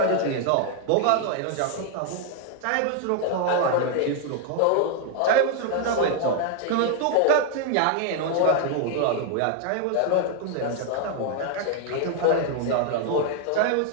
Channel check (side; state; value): both; different; correlation 0.00